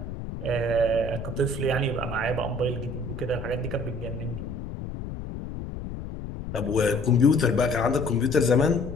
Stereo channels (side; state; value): left; noise; rumble, 8 dB below the sound